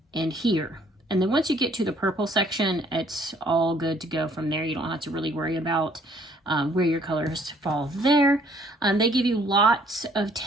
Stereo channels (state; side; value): normal; both; correlation 0.62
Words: and here, and then once you get to the purple section, it's all good to go from there. You don't have to really worry about where your colors fall there. They give you lots of